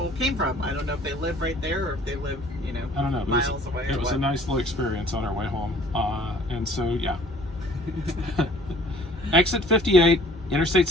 came from. I don't know if they live right there or if they live, I don't know. miles away. It was a nice little experience on our way home, and so Exit 58, Interstate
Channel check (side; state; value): both; normal; correlation 0.53